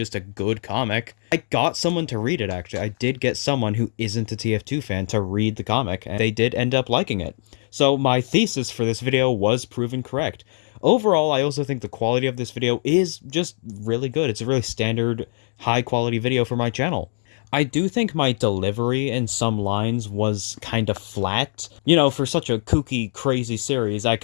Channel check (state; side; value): silent; right; digital silence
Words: a good comic. I got someone to read it, actually. I did get someone who isn't a TF2 fan to read the comic, and they did end up liking it. So my thesis for this video was proven correct. Overall, I also think the quality of this video is just really good. It's a really standard, high-quality video for my channel. I do think my delivery in some lines was kind of flat. For such a kooky, crazy series, I